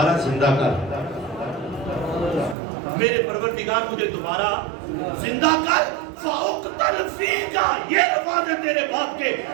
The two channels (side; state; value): left; drops out; at 2.6 s